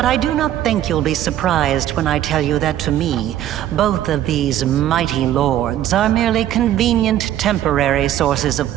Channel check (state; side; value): quieter; left; 12.1 dB